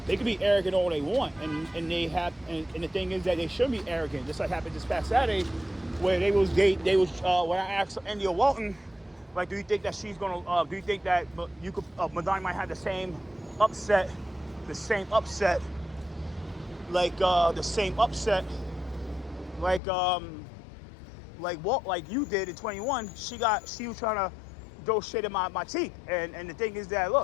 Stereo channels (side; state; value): right; drops out; at 19.8 s